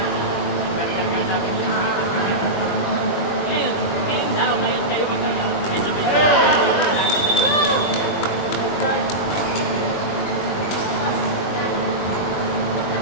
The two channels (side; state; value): right; late; 20 ms